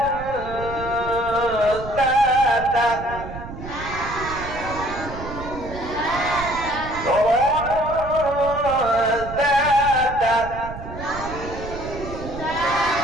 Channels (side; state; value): right; noise; rumble, 11 dB below the sound